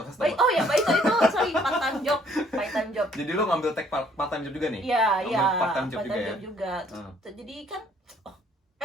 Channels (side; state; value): both; normal; correlation 0.62